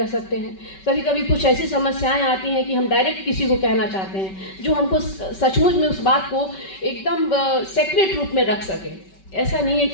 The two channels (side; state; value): right; late; 5.2 ms